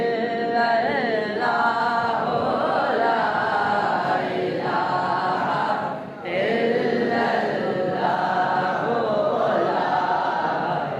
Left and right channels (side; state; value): both; identical; correlation 1.00